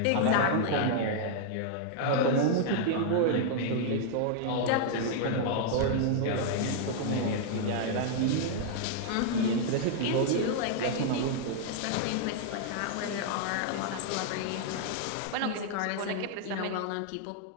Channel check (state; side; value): different; both; correlation -0.01